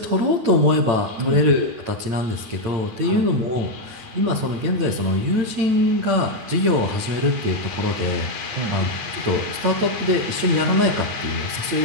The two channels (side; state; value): left; late; 8.9 ms